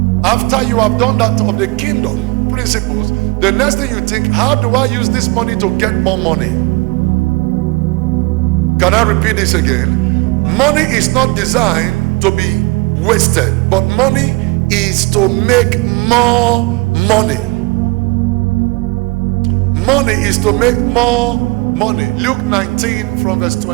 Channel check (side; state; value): left; quieter; 24.9 dB